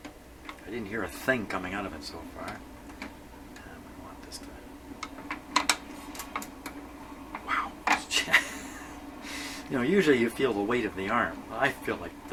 I didn't hear a thing coming out of it so far. I want this to... Wow. You know, usually you feel the weight of the arm. I feel like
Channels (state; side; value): identical; both; correlation 1.00